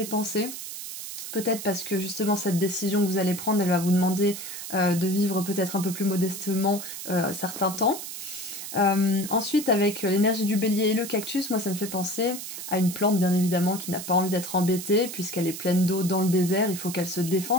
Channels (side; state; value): right; noise; hiss, 9 dB below the sound